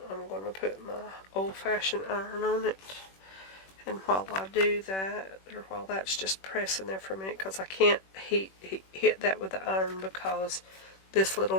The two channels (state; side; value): late; right; 21 ms